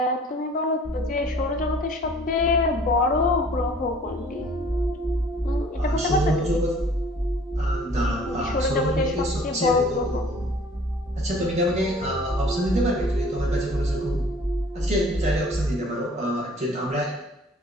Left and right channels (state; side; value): normal; both; correlation 0.52